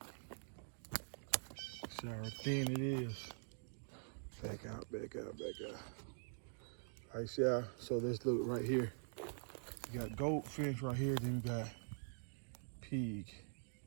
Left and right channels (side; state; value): left; silent; digital silence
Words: See how thin it is. Back out, back out, back out. All right, see how, so let's look right here. You got goat fence right here, then you got pig.